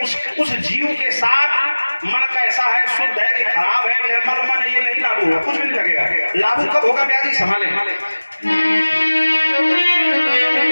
उस जीव के साथ मन कैसा है, शुद्ध है कि खराब है, निर्मल मन है, ये नहीं लागू होगा, कुछ भी नहीं लगेगा। लागू कब होगा ब्याजी? संभाले।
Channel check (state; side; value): inverted; both; correlation -1.00